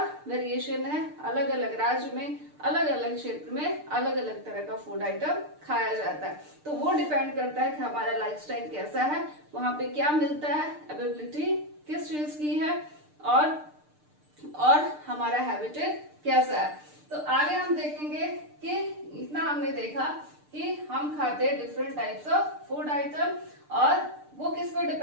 वेरिएशन है। अलग अलग राज्य में अलग अलग क्षेत्र में अलग अलग तरह का फूड आइटम खाया जाता है। तो वो डिपेंड करता है कि हमारा लाइफस्टाइल कैसा है, वहां पे क्या मिलता है, अवेलेबिलिटी किस चीज की है, और हमारा हैबिटेट कैसा है। तो आगे हम देखेंगे कि इतना हमने देखा कि हम खाते हैं different types of food item, और वो किस पर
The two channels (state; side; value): late; left; 6.7 ms